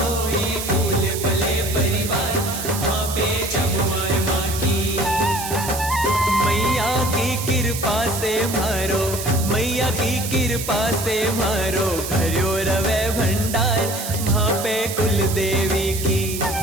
फूले फले परिवार। वहाँ पे जमुआए माँ की, मैया की कृपा से मारो, मैया की कृपा से मारो भर्यो रवे भंडार। वहाँ पे कुल देवी की,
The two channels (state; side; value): noise; right; hiss, 7 dB below the sound